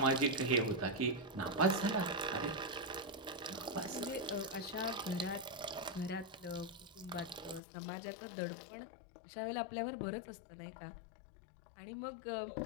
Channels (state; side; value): drops out; right; at 7.6 s